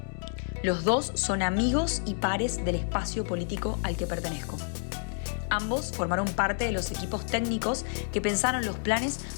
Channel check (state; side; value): silent; right; 58 dB below the other